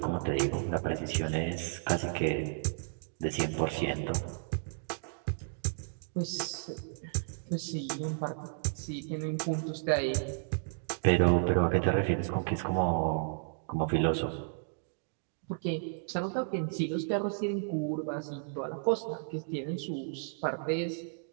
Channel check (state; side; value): silent; left; digital silence